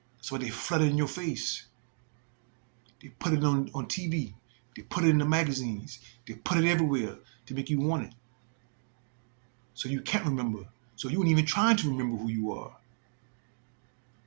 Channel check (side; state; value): left; silent; digital silence